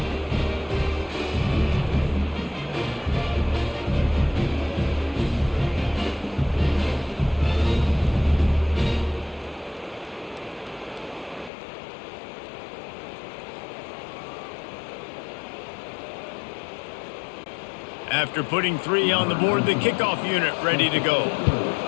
After putting 3 on the board, the kickoff unit ready to go.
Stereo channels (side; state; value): right; drops out; at 11.5 s